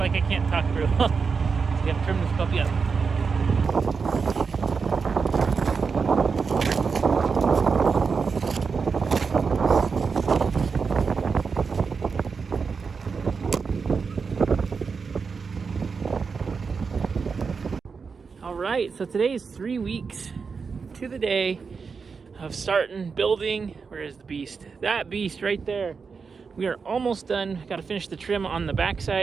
I can't talk through. So we have to trim this puppy up. Alright, so today is 3 weeks to the day of starting building. Where is the beast? That beast right there. We are almost done. Got to finish the trim on the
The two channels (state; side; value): quieter; left; 5.3 dB